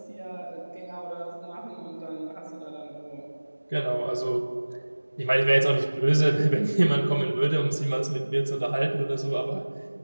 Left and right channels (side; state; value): both; inverted; correlation -1.00